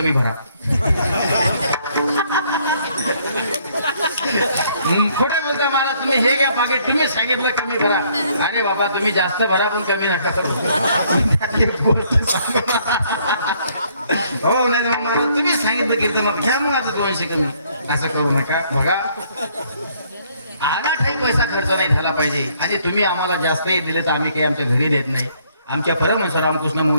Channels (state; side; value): inverted; both; correlation -0.66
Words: भरा. खोटे बोलता महाराज, तुम्ही हे घ्या पाकिट, तुम्ही सांगितलं कमी भरा. अरे बाबा, तुम्ही जास्त भरा पण कमी नका करू. हो नाही मग महाराज तुम्ही सांगितलं कीर्तनात घ्या मग आता 200 कमी, असं करू नका. बघा, अनाठाई पैसा खर्च नाही झाला पाहिजे. आणि तुम्ही आम्हाला जास्तही दिले तर आम्ही काही आमच्या घरी देत नाही. आमच्या परमहंस रामकृष्ण